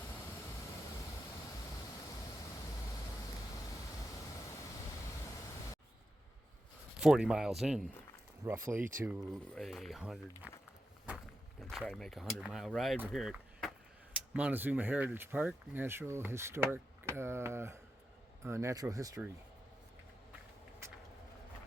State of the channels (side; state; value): both; normal; correlation 0.88